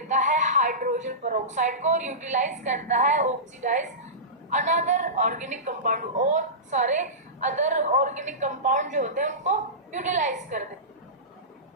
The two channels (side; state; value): both; normal; correlation -0.19